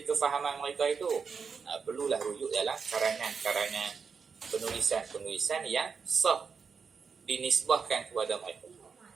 kefahaman mereka itu? Perlulah rujuk dalam karangan-karangan, penulisan-penulisan yang sah dinisbahkan kepada mereka.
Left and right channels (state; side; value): quieter; left; 5.7 dB